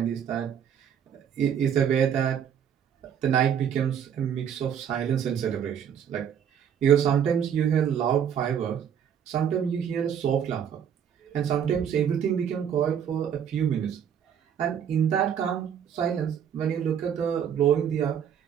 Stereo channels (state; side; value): quieter; left; 8.6 dB